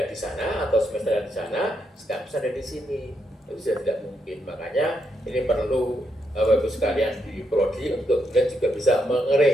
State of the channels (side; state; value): both; normal; correlation 0.80